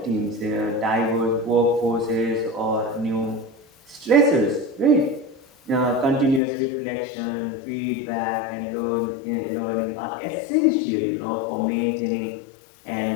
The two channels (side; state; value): right; drops out; at 6.4 s